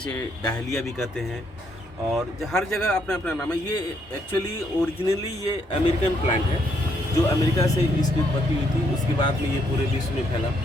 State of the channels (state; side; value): normal; both; correlation 0.73